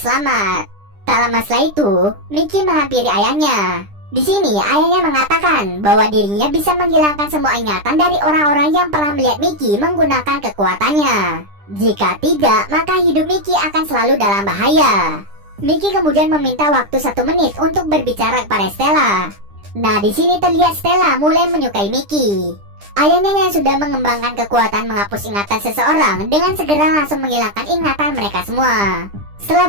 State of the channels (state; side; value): late; left; 10 ms